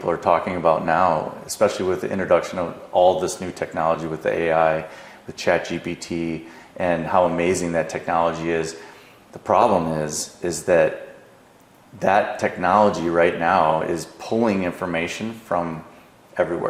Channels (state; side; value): identical; both; correlation 1.00